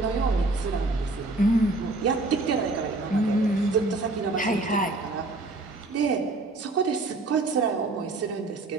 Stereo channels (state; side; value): quieter; left; 3.1 dB